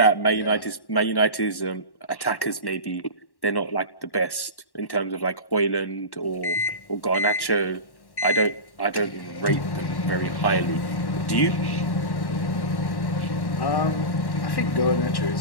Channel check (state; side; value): late; right; 1.1 ms